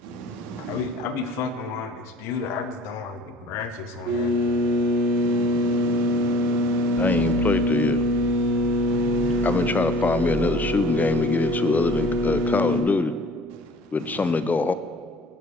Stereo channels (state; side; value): normal; both; correlation 0.47